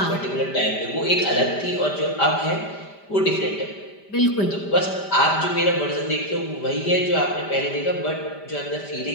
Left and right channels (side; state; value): right; late; 5.1 ms